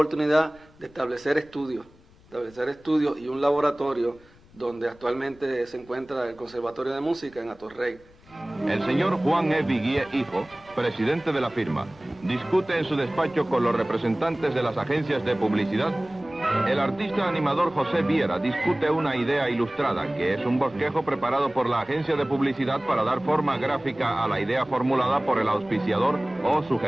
de establecer estudios y un laboratorio donde actualmente se encuentra el Conservatorio de Música en Atorrey. El señor Juan E. Viguié, hijo, presidente de la firma, discute en su despacho con los representantes de las agencias de publicidad. El artista animador José Viera discute una idea ilustrada, que es un bosquejo preparado por la agencia de publicidad para dar forma gráfica a la idea formulada por el auspiciador o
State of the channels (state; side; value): noise; left; rumble, 26 dB below the sound